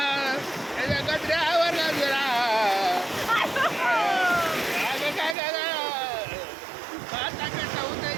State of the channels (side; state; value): left; drops out; at 5.4 s